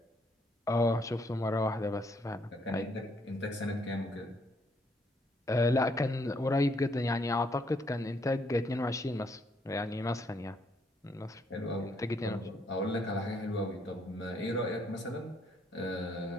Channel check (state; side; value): normal; both; correlation 0.70